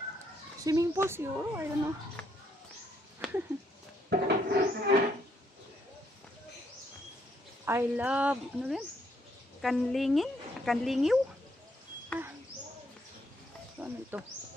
Swimming pool siguro. I don't know. I love, ano rin? Kanlingin? Kanlingiw? Ah. So, ano ito?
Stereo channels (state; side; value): normal; both; correlation 0.73